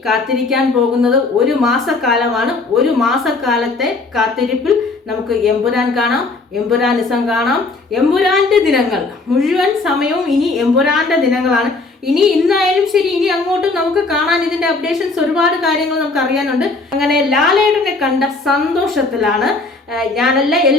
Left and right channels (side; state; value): right; quieter; 3.6 dB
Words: കാത്തിരിക്കാൻ പോകുന്നത് 1 മാസക്കാലമാണ്. 1 മാസക്കാലത്തെ കാത്തിരിപ്പിൽ നമുക്ക് എമ്പുരാൻ കാണാം, എമ്പുരാനിസം കാണാം. എമ്പുരാന്റെ ദിനങ്ങൾ മുഴുവൻ സമയവും ഇനി എമ്പുരാന്റെ ദിനങ്ങളാണ്. ഇന്നായാലും ശരി, ഇനി അങ്ങോട്ടും നമുക്ക് കാണാൻ ഇതിന്റെ അപ്ഡേഷൻസ്, ഒരുപാട് കാര്യങ്ങൾ നമുക്ക് അറിയാനുണ്ട്. അങ്ങനെ ലാലേട്ടനെ കണ്ട സന്തോഷത്തിലാണ് ഞാനല്ല,